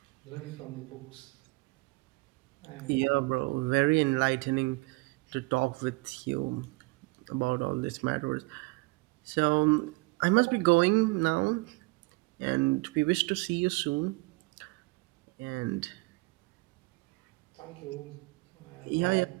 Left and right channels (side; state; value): left; quieter; 25.3 dB